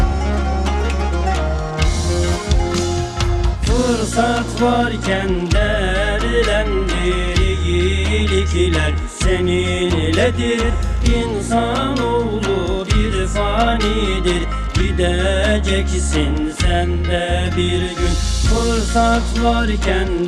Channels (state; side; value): identical; both; correlation 1.00